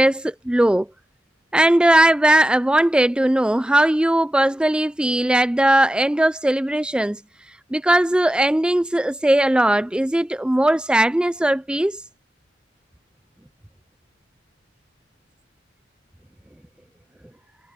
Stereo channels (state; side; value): normal; both; correlation 0.92